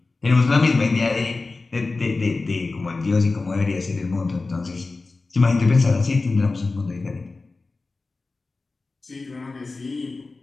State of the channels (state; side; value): quieter; right; 3.7 dB